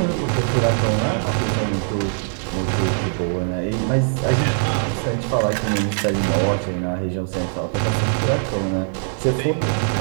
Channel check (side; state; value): left; silent; digital silence